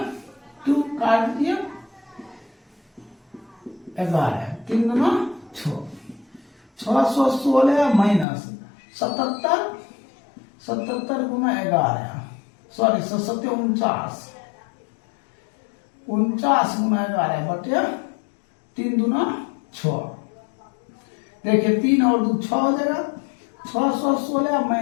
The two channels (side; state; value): right; drops out; at 8.2 s